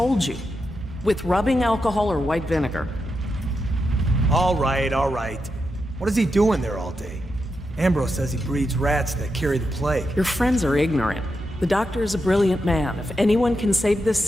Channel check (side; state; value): both; normal; correlation 0.86